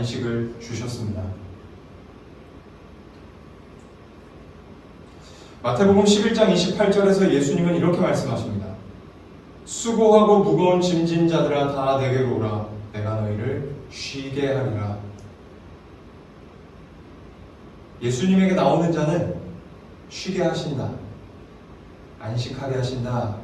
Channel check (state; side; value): identical; both; correlation 1.00